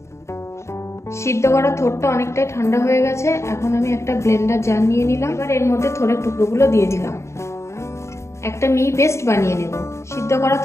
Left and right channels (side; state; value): right; late; 0.14 ms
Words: সিদ্ধ করা থোরটা অনেকটাই ঠান্ডা হয়ে গেছে। এখন আমি একটা ব্লেন্ডার জার নিয়ে নিলাম। এবার এর মধ্যে থোরের টুকরোগুলো দিয়ে দিলাম। একটা মিহি পেস্ট বানিয়ে নেব। সিদ্ধ করা